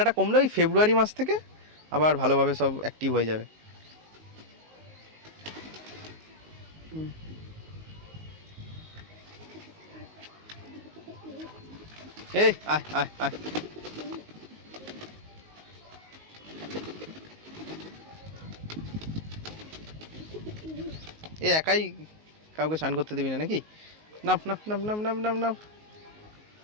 কমলে ওই ফেব্রুয়ারি মাস থেকে আবার ভালোভাবে সব অ্যাক্টিভ হয়ে যাবে। এই আয় আয় আয়, এ একাই কাউকে স্নান করতে দিবি না নাকি? নাম নাম নাম নাম নাম নাম নাম,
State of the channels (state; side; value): late; left; 19 ms